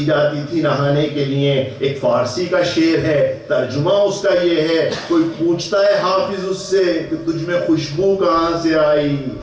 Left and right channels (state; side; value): identical; both; correlation 1.00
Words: جاتی تھی نہانے کے لیے، ایک فارسی کا شعر ہے، ترجمہ اس کا یہ ہے، کوئی پوچھتا ہے حافظ اس سے کہ تجھ میں خوشبو کہاں سے آئی،